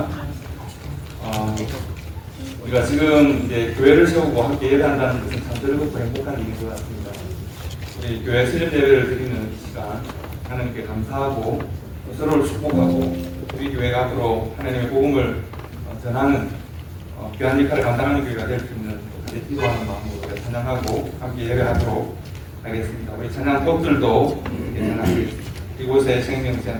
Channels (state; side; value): identical; both; correlation 1.00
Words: 우리가 지금 이제 교회를 세우고 함께 예배한다는 것은 참 즐겁고 행복한 일인 것 같습니다. 우리 교회 수련 예배를 드리는 시간 하나님께 감사하고 서로를 축복하고 우리 교회가 앞으로 하나님의 복음을 전하는 귀한 역할을 감당하는 교회가 될 수 있는 기도하는 마음으로 찬양하고 함께 예배하도록 하겠습니다. 우리 찬양곡들도 찬양하겠습니다. 이곳에